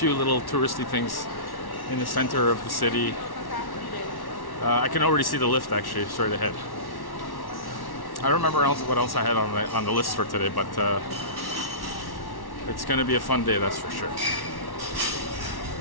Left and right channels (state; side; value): late; right; 1.1 ms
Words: little touristy things in the center of the city. I can already see the lift actually straight ahead. I don't remember what else I had on the list for today, but it's gonna be a fun day, that's for sure.